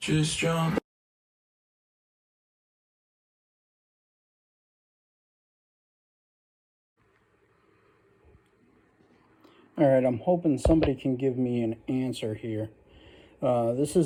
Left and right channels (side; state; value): both; identical; correlation 1.00